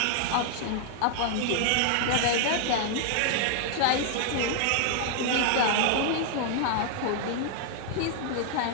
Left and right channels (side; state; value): both; different; correlation 0.00